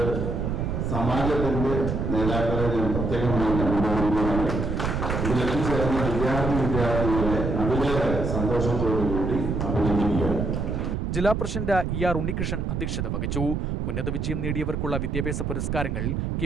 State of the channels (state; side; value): noise; right; rumble, 1 dB below the sound